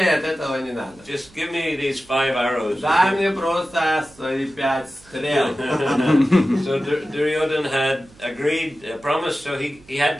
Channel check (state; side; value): noise; right; hum, 26 dB below the sound